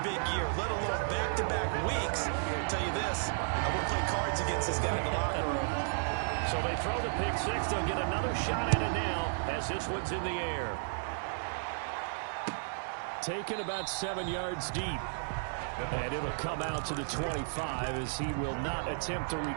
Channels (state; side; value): silent; left; digital silence